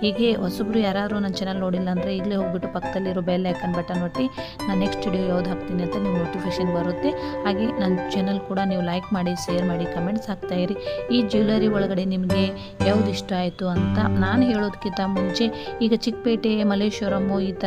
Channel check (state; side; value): identical; both; correlation 1.00